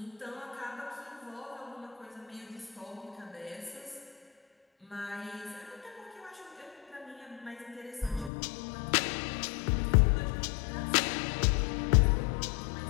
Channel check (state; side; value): drops out; right; at 8.3 s